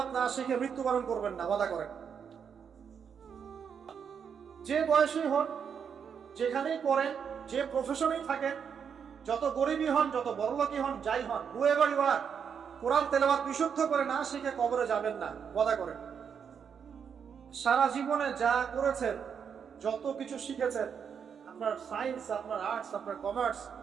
না শিখে মৃত্যুবরণ করবেন না, ওয়াদা করেন। যে বয়সেই হন, যেখানেই পড়েন, যে প্রফেশনেই থাকেন, যত গরিবই হন, যত বড়লোকই হন, যাই হন, হুয়েভার ইউ আর, কোরআন তেলাওয়াত বিশুদ্ধ করে না শিখে কবরে যাবেন না, ওয়াদা করেন। সারা জীবনে যা করেছেন, যত কিছু শিখেছেন, আপনার সায়েন্স, আপনার আর্টস, আপনার commerce,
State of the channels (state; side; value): quieter; left; 7.1 dB